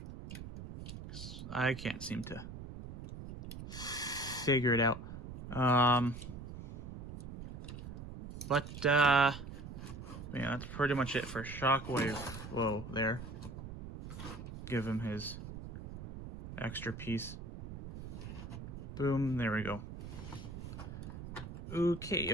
I can't seem to figure it out. Yeah, that's pretty much it for Shockwave. Whoa, there. Give him his extra piece. Boom, there we go. Okay,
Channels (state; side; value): noise; right; rumble, 10 dB below the sound